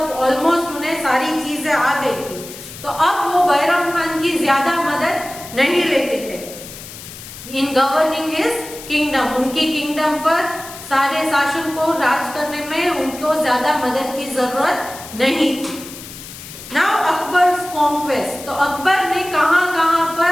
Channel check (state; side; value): noise; left; hiss, 14 dB below the sound